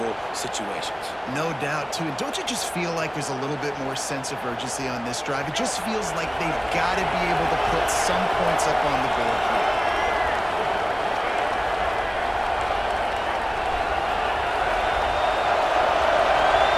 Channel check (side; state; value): both; identical; correlation 1.00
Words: situations. No doubt, too. And don't you just feel like there's a little bit more sense of urgency on this drive? It just feels like they've got to be able to put some points up on the board here.